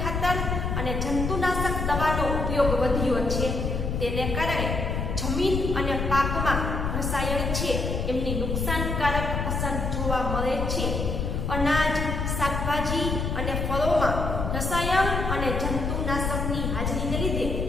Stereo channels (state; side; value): noise; left; rumble, 1 dB below the sound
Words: ખાતર અને જંતુનાશક દવાનો ઉપયોગ વધ્યો છે. તેને કારણે જમીન અને પાકમાં રસાયણ છે એમની નુકસાનકારક અસર જોવા મળે છે. અનાજ, શાકભાજી અને ફળોમાં રસાયણ અને જંતુનાશકની હાજરીને લીધે